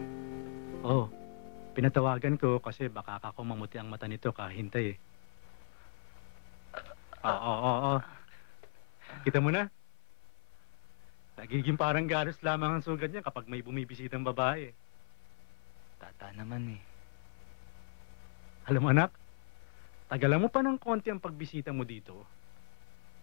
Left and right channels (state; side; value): silent; right; 53 dB below the other